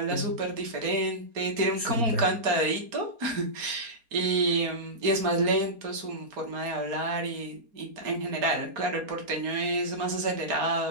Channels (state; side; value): late; left; 4.3 ms